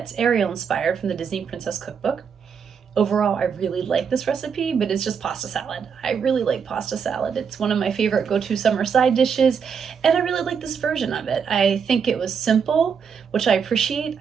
Ariel inspired from the Disney Princess Cookbook. Overall, I really like this recipe, but it's just pasta salad. I really like pasta salad. It's one of my favorite go-to summer side dishes, and I really like this version of it. I think it was simple, which I appreciate.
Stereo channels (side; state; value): left; quieter; 6.6 dB